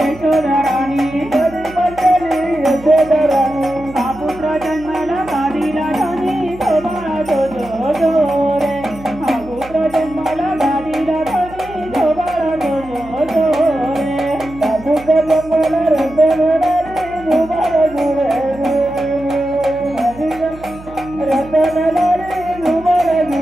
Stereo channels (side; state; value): right; noise; hum, 18 dB below the sound